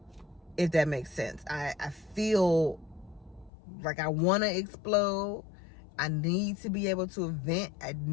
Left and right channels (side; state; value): right; drops out; at 3.5 s